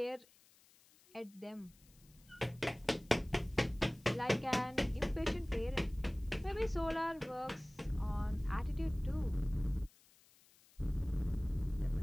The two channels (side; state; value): left; noise; hiss, 28 dB below the sound